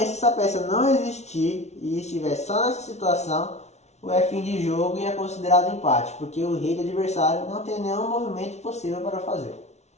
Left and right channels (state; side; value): late; right; 0.32 ms